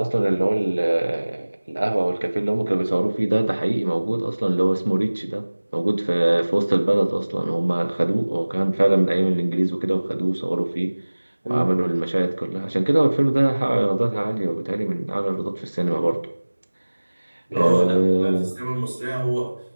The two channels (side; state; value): both; inverted; correlation -1.00